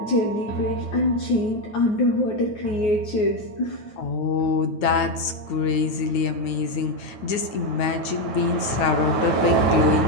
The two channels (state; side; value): late; right; 9.2 ms